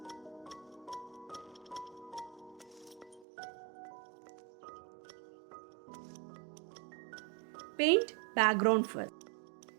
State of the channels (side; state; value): left; drops out; at 3.2 s